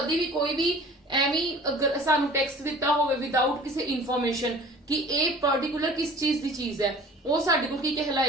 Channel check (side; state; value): both; normal; correlation 0.45